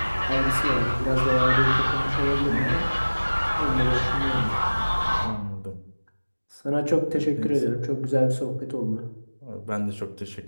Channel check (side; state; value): both; inverted; correlation -1.00